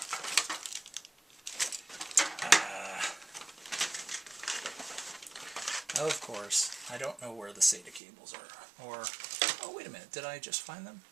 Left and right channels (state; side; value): drops out; left; at 8.0 s